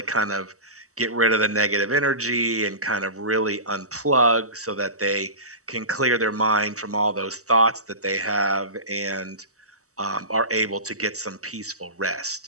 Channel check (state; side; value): late; left; 0.65 ms